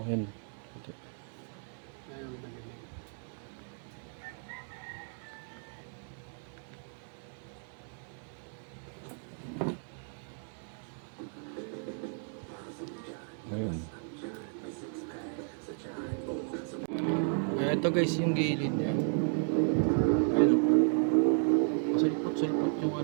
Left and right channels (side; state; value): left; silent; 55 dB below the other